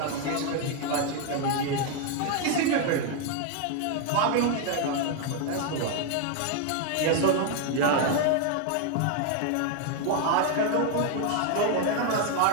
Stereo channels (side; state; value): both; different; correlation 0.01